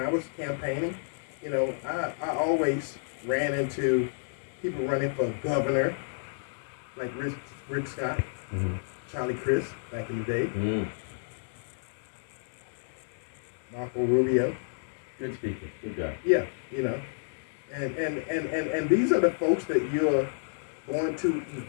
was campaigning, I always ran into people running for governor, like Rick Scott, Charlie Crist back in the day, Marco Rubio. Good speaker, good guy. Yeah, and these are the folks that you're going to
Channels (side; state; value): right; silent; digital silence